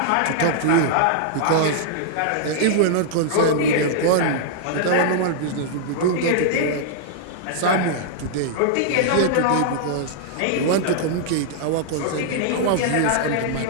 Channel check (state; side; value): different; both; correlation -0.01